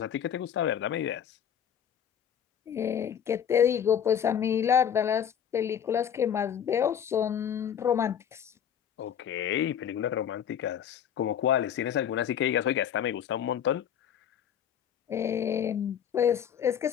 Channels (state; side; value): quieter; right; 8.8 dB